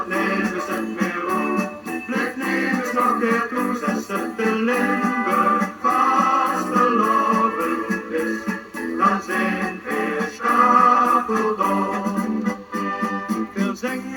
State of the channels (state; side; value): identical; both; correlation 1.00